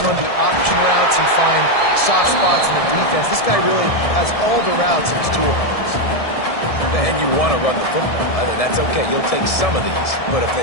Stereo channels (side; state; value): right; late; 1.7 ms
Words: run the option routes and find soft spots in the defense. This guy really has all the routes in his toolbox. And you want to run the football. That's okay. You'll take some of these. But if they